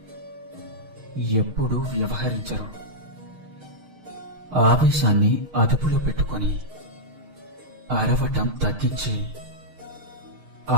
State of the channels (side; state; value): left; late; 6.5 ms